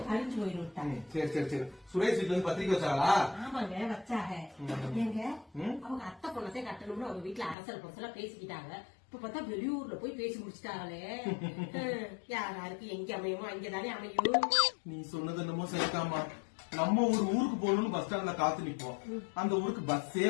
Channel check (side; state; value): right; drops out; at 7.6 s